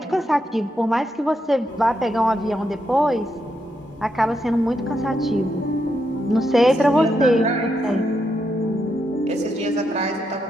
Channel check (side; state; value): both; normal; correlation 0.81